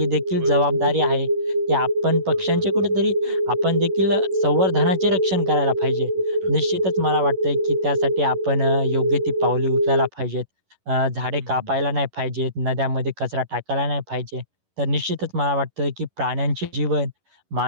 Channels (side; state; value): left; late; 11 ms